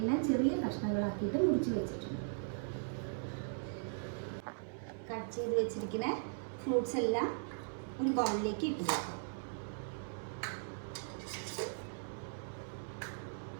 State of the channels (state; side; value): silent; left; 52 dB below the other